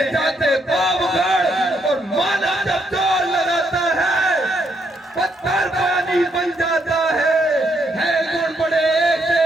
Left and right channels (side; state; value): both; normal; correlation 0.75